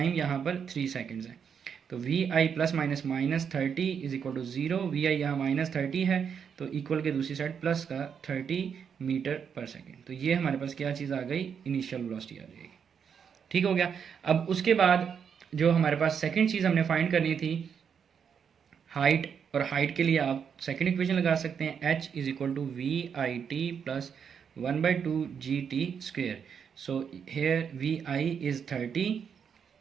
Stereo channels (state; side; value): quieter; left; 7.2 dB